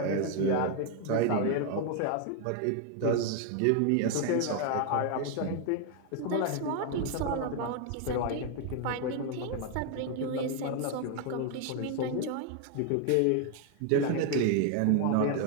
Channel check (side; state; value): both; different; correlation 0.01